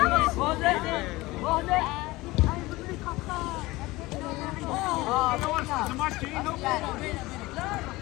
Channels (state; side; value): quieter; right; 20.2 dB